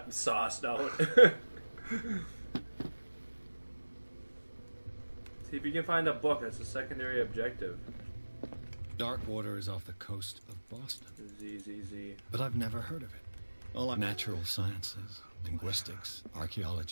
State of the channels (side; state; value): both; inverted; correlation -1.00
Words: sauced out. See if you can find a book. That's a secondary objective. Darkwater is off the coast of Boston. Z. But I've never heard of it. All natural sciences, linguistics,